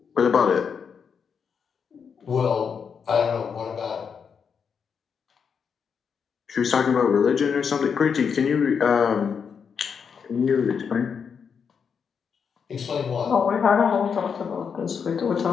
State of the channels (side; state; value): right; quieter; 6.5 dB